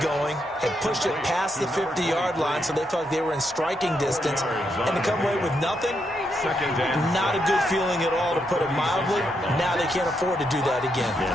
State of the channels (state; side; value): normal; both; correlation 0.80